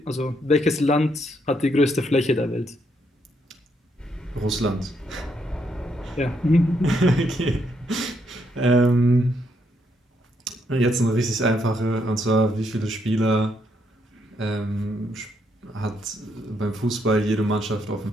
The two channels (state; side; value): normal; both; correlation 0.75